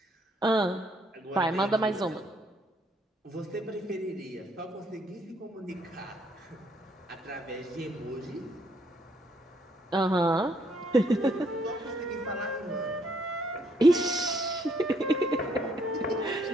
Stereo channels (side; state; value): both; normal; correlation 0.69